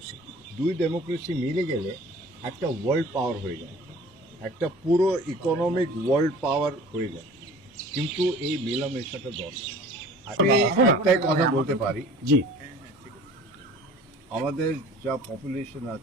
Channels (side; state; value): both; normal; correlation 0.46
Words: দুই ডেমোক্রেসি মিলে গেলে একটা ওয়ার্ল্ড পাওয়ার হয়ে যায়, একটা পুরো ইকোনমিক ওয়ার্ল্ড পাওয়ার হয়ে যায়। কিন্তু এই মেলামেশাটা দরকার। আমি একটাই কথা বলতে পারি, জি, আমাদের যা পপুলেশন